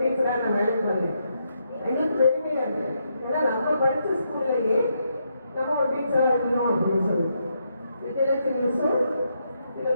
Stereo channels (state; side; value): inverted; both; correlation -0.79